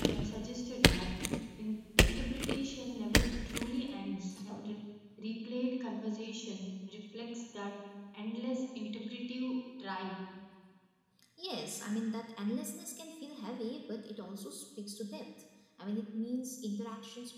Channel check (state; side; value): identical; both; correlation 1.00